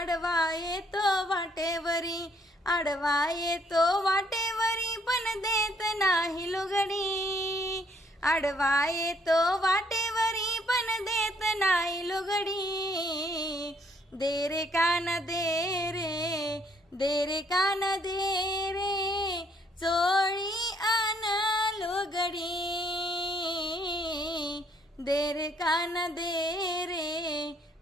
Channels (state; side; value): normal; both; correlation 0.67